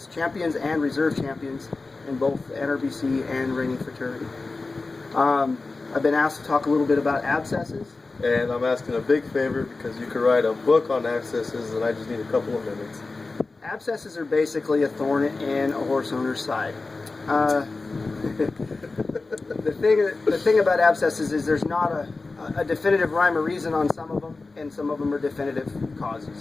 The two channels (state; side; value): quieter; right; 3.6 dB